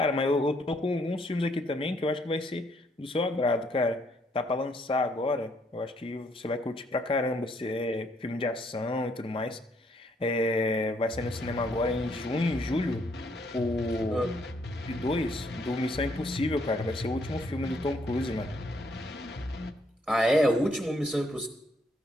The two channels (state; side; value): normal; both; correlation 0.70